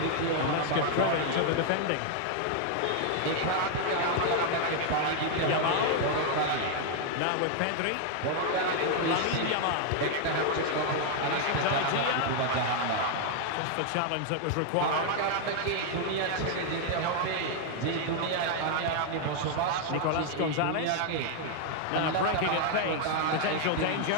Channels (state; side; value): different; both; correlation 0.00